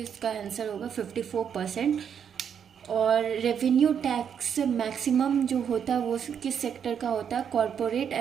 आंसर होगा 54%. और रेवेन्यू टैक्स मैक्सिमम जो होता है वो किस सेक्टर का होता है? कॉरपोरेट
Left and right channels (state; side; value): quieter; left; 7.9 dB